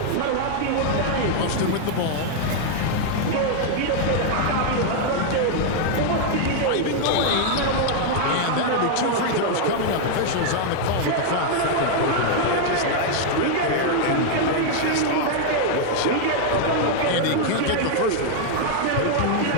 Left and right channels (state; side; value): different; both; correlation 0.00